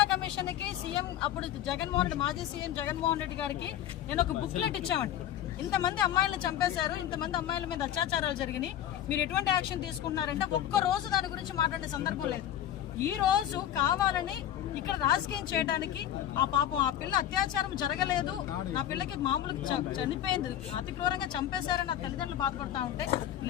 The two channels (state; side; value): quieter; right; 11.3 dB